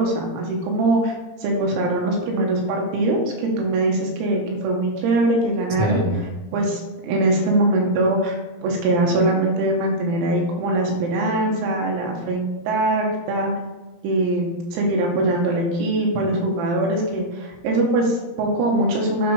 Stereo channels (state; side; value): late; left; 17 ms